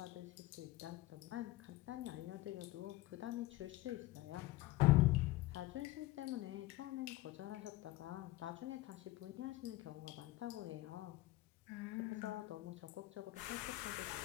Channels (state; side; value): quieter; right; 17.7 dB